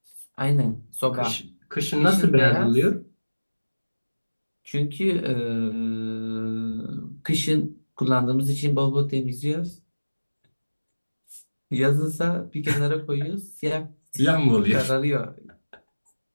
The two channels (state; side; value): inverted; both; correlation -1.00